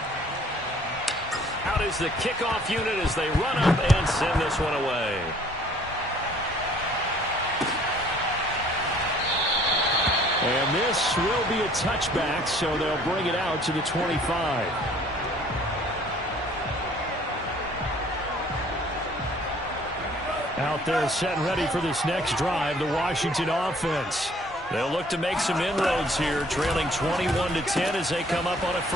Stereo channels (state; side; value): normal; both; correlation 0.57